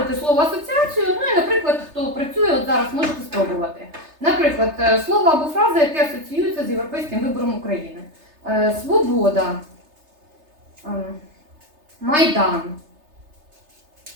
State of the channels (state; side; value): late; left; 3.3 ms